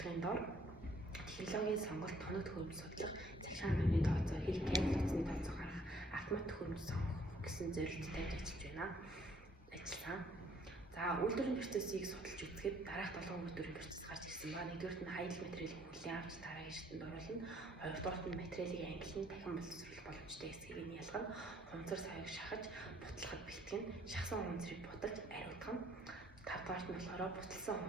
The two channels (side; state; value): both; normal; correlation 0.62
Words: дор технологийн сонголт, тоног төхөөрөмж судлах, захиргааны орны тооцоо, хэл кабель утасны тооцоо гаргах, автомат төхөөрөмж сонгох гэсэн зорилттой ажиллаж байна. За, үйлдвэрийн процессыг судалж үзэхэд дараах 7 үйлдвэрийн процесс гарч ирсэн ба. Нэгдүгээрт нь хаягдл материалыг хүлээн авч дараагийн шатанд оруулна. Хоёрдугаарт нь материалыг ангилан дахин боловсруулах боломжтой эсэхийг нь ялгана. Хунцар саяг шахаж, бутлахад бэлтгэн, шахсан хунцрыг буталж ариутгана. Тавдугаарт нь болохоор буталсан